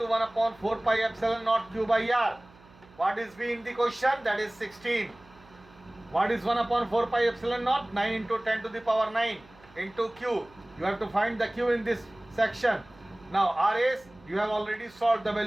1/4 pi epsilon naught Q by R। What is V in the question? That is 16. What is 1/4 pi epsilon naught? 9 into 10 to the power 9 into Q. You have to find the Q in this section. Now R is, you have already solved the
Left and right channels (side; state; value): right; noise; hum, 26 dB below the sound